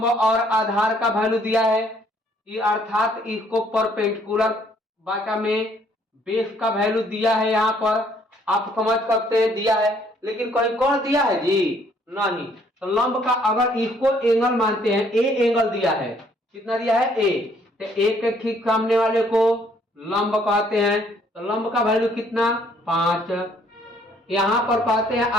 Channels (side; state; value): both; normal; correlation 0.64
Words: और आधार का वैल्यू दिया है, ये अर्थात इसको परपेंडिकुलर बाटा में बेस का वैल्यू दिया है। यहाँ पर आप समझ सकते हैं दिया है, लेकिन कहीं कौन दिया है जी, नहीं। तो लंब का अगर इसको एंगल मानते हैं, ए एंगल दिया है, कितना दिया है ए, तो ए के ठीक सामने वाले को लंब कहते हैं। तो लंब का वैल्यू कितना 5। यहां पर कहते हैं